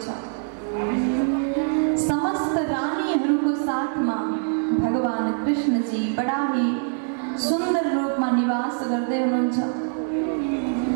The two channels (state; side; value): silent; left; 63 dB below the other